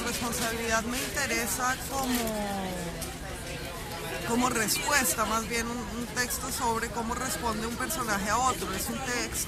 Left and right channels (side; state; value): both; identical; correlation 1.00